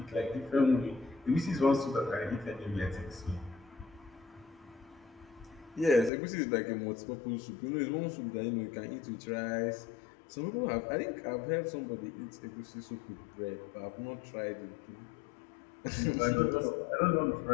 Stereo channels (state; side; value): drops out; right; at 6.1 s